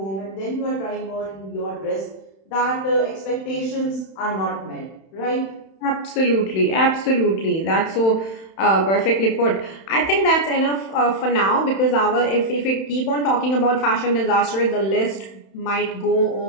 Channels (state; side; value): late; right; 31 ms